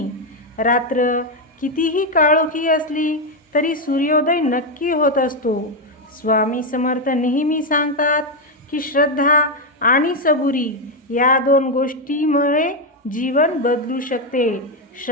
रात्र कितीही काळोखी असली तरी सूर्योदय नक्की होत असतो। स्वामी समर्थ नेहमी सांगतात की श्रद्धा आणि सबुरी या दोन गोष्टींमुळे जीवन बदलू शकते।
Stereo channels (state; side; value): normal; both; correlation 0.04